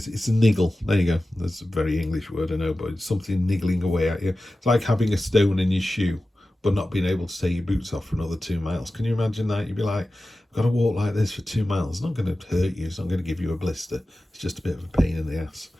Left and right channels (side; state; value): both; normal; correlation 0.95